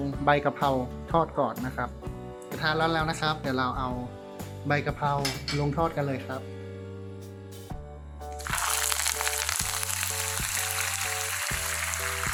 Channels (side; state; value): both; identical; correlation 1.00